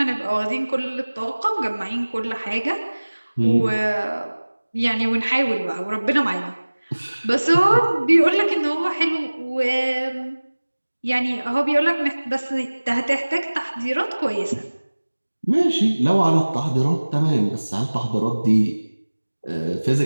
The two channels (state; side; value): inverted; both; correlation -1.00